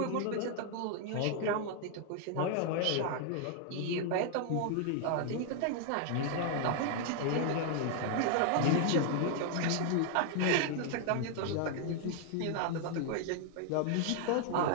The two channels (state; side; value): different; both; correlation 0.00